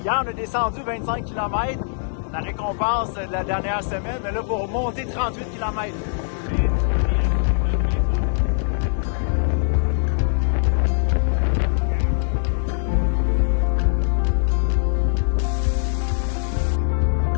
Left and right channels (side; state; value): right; silent; digital silence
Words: on a descendu 25 km, la récompense de la dernière semaine. Mais là, pour monter 38 km.